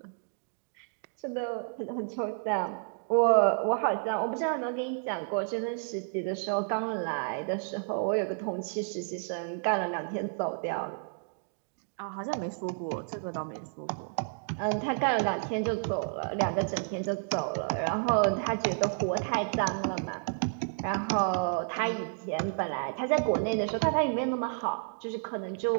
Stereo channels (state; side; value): silent; left; digital silence